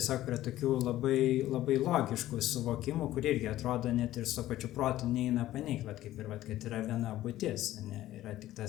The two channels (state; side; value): quieter; right; 14.5 dB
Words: prie tokių labai, labai logiškų suvokimų, kur irgi atrodo net ir su pačiu protu neina paneigti, va kaip ir va, kad yra viena būtis, ne, yra tik